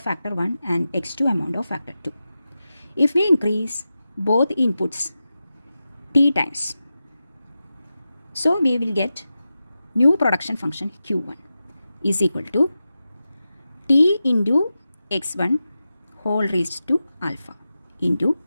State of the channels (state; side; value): inverted; both; correlation -0.92